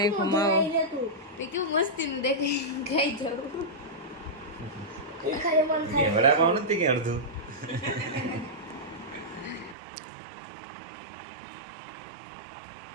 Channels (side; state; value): left; drops out; at 9.8 s